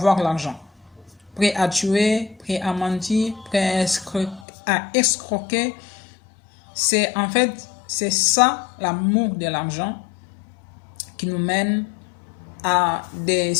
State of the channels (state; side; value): drops out; right; at 4.5 s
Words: l'argent. Prêts à tuer, prêts à mentir, prêts à escroquer. C'est en fait, c'est ça l'amour de l'argent qui nous mène à des